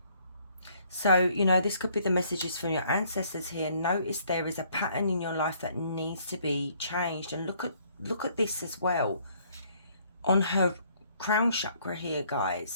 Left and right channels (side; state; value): both; inverted; correlation -0.64